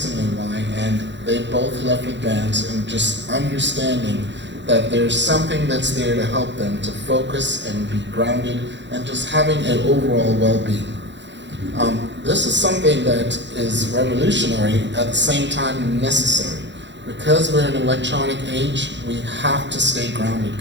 why, and they both left with bands and just understanding that there's something that's there to help them to focus and be grounded and just having an overall well-being. This is something that is revolutionary, at the same time necessary. Because we're in an electronic age, we have to stay grounded,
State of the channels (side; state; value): left; late; 0.52 ms